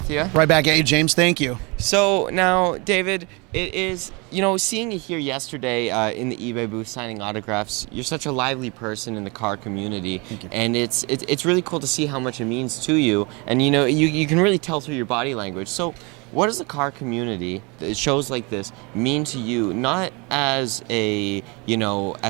you. Right back at you, James. Thank you. So now, David, it is, seeing you here yesterday in the eBay booth signing autographs, you're such a lively person in the car community. Thank you. And it's really cool to see how much it means to you. And you can really tell through your body language. So what does the car community, shows like this, mean to you, not as a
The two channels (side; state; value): left; quieter; 28.8 dB